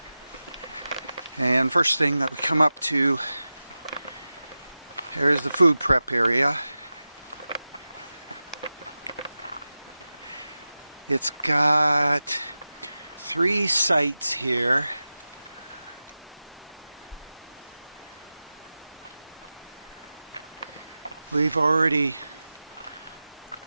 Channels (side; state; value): both; inverted; correlation -0.95